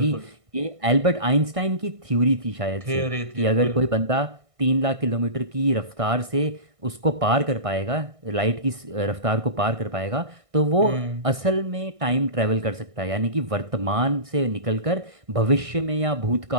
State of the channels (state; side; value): late; left; 1.6 ms